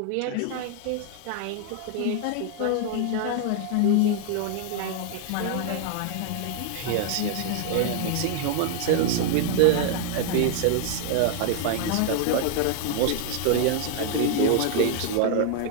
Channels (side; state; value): both; different; correlation 0.00